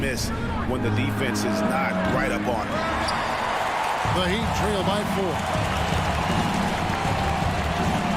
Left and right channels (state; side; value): identical; both; correlation 1.00